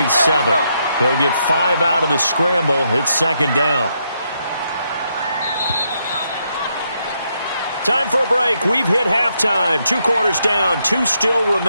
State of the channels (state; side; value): inverted; both; correlation -0.78